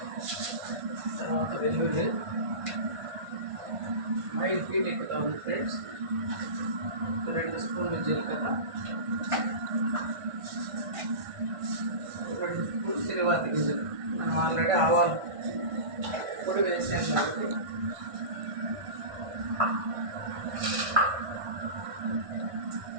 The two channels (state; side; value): late; left; 1.5 ms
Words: తర్వాత వెల్లుల్లి 5 ఫీట్ ఎక్కుతా ఉంది ఫ్రెండ్స్. 2 స్పూన్లు జీలకర్ర, 2 స్పూన్లు తిరువాతి గింజలు. మనం ఆల్రెడీ ఆవాలు పొడి వేసాం కాబట్టి